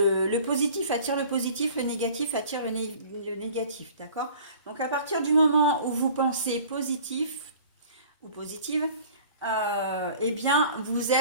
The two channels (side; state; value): both; inverted; correlation -0.47